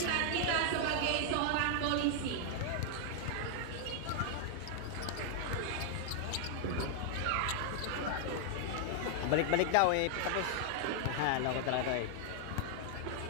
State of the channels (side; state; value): both; different; correlation 0.00